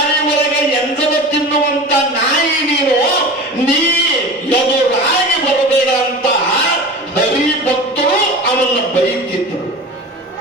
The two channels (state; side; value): normal; both; correlation 0.33